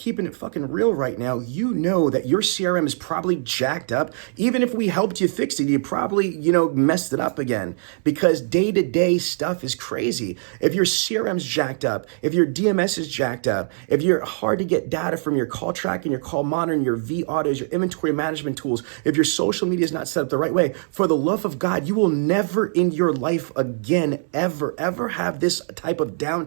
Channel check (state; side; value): silent; left; digital silence